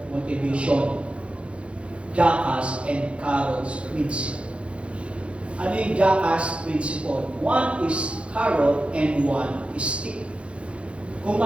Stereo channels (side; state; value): left; late; 0.060 ms